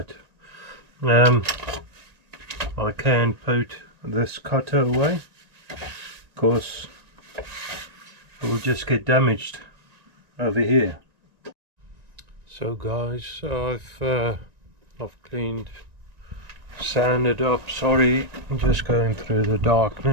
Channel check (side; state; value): left; late; 1.9 ms